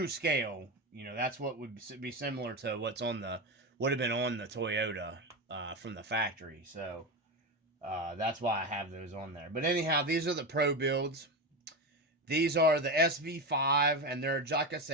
scale. That's what would be similar to would have been on the Toyota from the factory. So that's why I have those on there. But anyhow, these are the pro builds. These are the SV5, and they're, like I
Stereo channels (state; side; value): normal; both; correlation 0.18